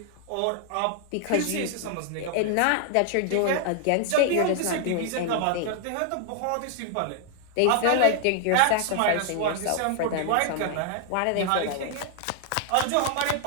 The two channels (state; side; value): different; both; correlation 0.00